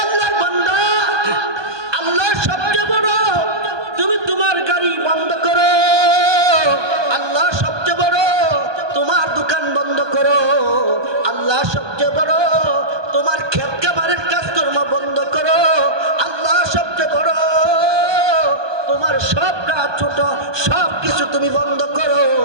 আল্লাহর বান্দা, আল্লাহ সবচেয়ে বড়, তুমি তোমার গাড়ি বন্ধ করো। আল্লাহ সবচেয়ে বড়, তোমার দোকান বন্ধ করো। আল্লাহ সবচেয়ে বড়, তোমার ক্ষেত খামারের কাজকর্ম বন্ধ করো। আল্লাহ সবচেয়ে বড়, তোমার সব কাজ ছোট সব কিছু তুমি বন্ধ করো।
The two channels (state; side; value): late; left; 1.2 ms